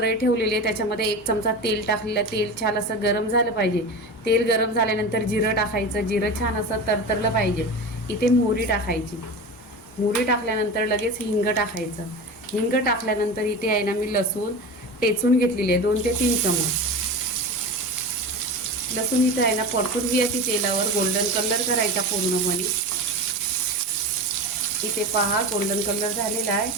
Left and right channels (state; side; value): normal; both; correlation 0.28